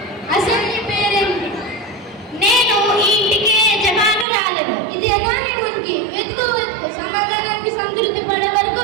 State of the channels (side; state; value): left; drops out; at 4.2 s